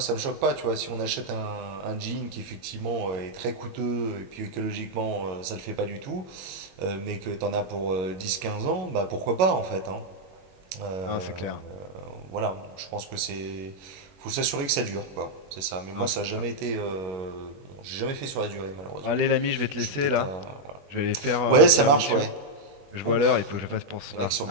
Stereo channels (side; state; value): left; late; 21 ms